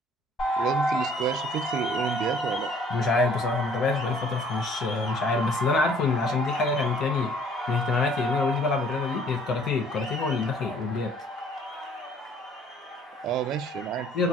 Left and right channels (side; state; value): both; normal; correlation 0.57